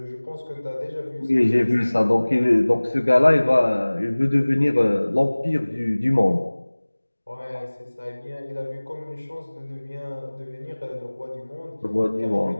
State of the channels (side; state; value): both; inverted; correlation -1.00